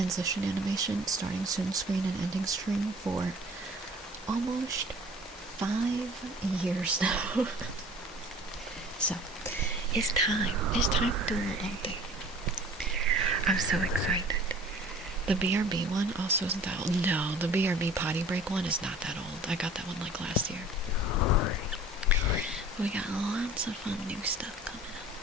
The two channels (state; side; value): normal; both; correlation 0.47